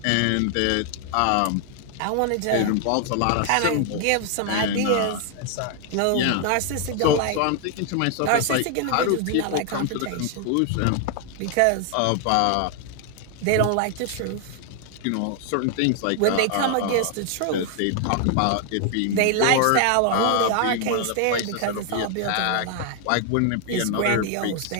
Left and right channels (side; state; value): both; different; correlation 0.00